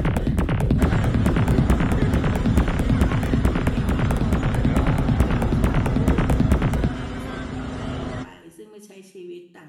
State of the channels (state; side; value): identical; both; correlation 1.00